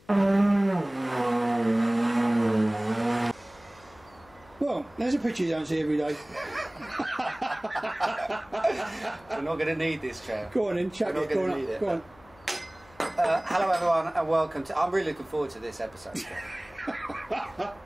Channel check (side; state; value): left; noise; hum, 26 dB below the sound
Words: Well, there's a picture you don't see every day. We're not going to need this, Trev. Go on in, chuck it. Go on. Go on. Hello everyone and welcome to... I'm really looking forward to this episode.